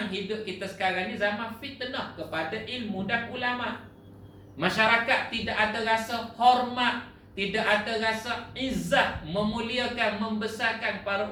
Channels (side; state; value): both; identical; correlation 1.00